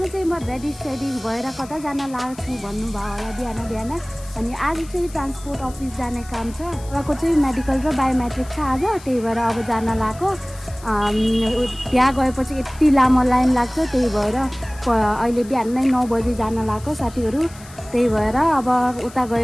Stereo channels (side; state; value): left; noise; hiss, 20 dB below the sound